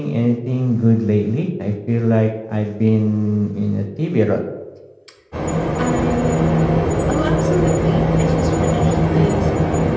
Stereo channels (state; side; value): identical; both; correlation 1.00